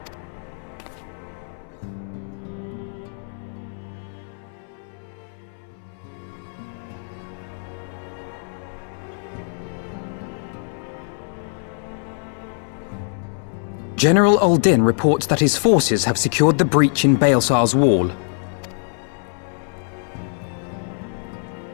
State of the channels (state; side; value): silent; right; 63 dB below the other